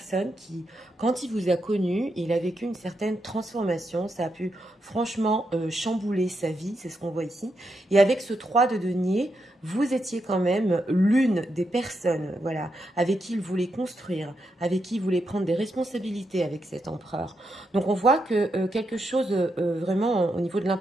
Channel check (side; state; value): both; normal; correlation 0.83